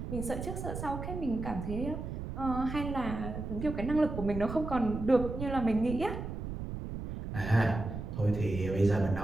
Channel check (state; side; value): noise; right; rumble, 6 dB below the sound